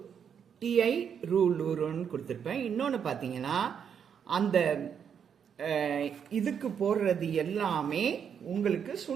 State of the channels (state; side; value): quieter; left; 7.6 dB